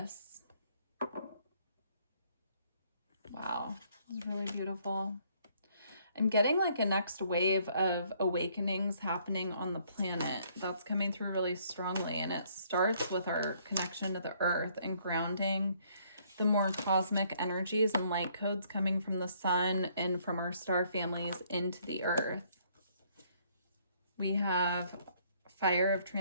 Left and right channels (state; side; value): inverted; both; correlation -0.65